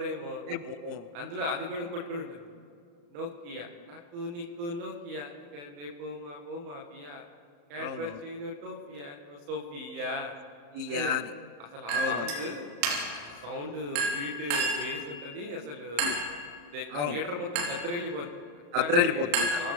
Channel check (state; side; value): late; left; 35 ms